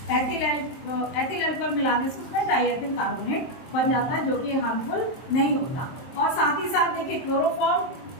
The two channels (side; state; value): right; late; 23 ms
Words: एथिल अल्कोहल मिलाने से उसमें डाईएथिल कार्बोनेट बन जाता है, जो कि हार्मफुल नहीं होता। और साथ ही साथ देखिए क्लोरोफॉर्म